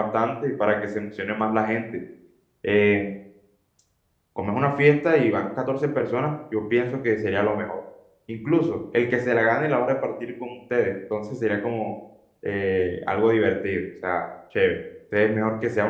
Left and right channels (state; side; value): identical; both; correlation 1.00